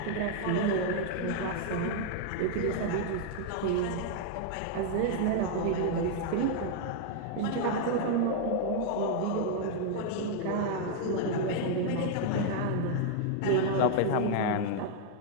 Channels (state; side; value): different; both; correlation 0.00